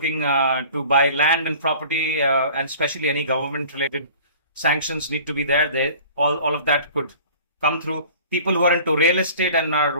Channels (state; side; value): inverted; both; correlation -0.46